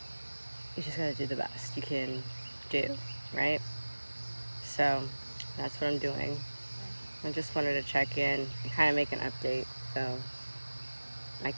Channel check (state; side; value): inverted; both; correlation -1.00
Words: you just gotta do the best you can do, right? So that's what I'm doing. I just wanted to check in and kind of make an update so I